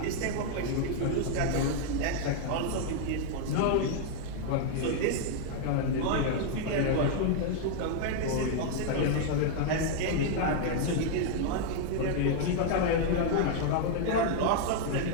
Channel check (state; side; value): different; both; correlation 0.00